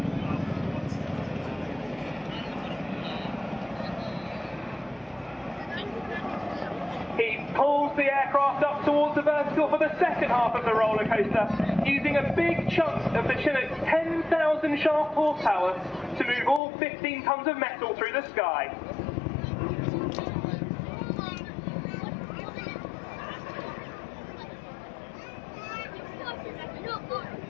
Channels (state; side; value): drops out; right; at 16.6 s